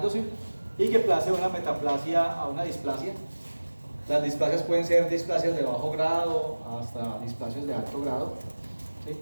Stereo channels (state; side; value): inverted; both; correlation -1.00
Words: y que pase una metaplasia a una displasia. Las displasias pueden ser displasias de bajo grado hasta displasias de alto grado, ¿sí?